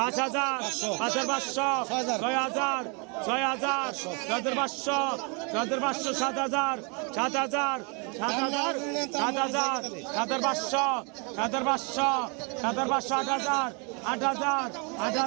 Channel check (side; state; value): left; quieter; 34.0 dB